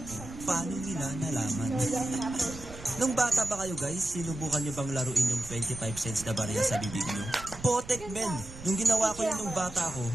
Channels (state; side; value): noise; right; rumble, 15 dB below the sound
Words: mo, paano nila nalaman? Nung bata ba kayo guys, sinubukan nyo bang laruin yung 25 cents na barya sa bibig nyo? Potek men! Nung ginawa ko yun nung bata ko,